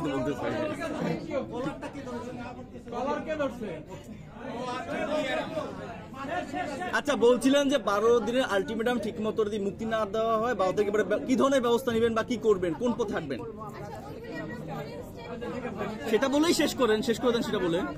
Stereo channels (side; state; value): both; identical; correlation 1.00